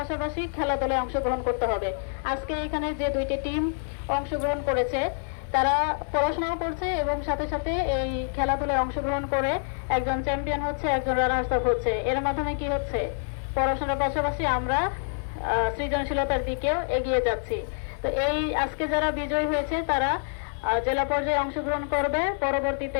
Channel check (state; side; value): silent; right; digital silence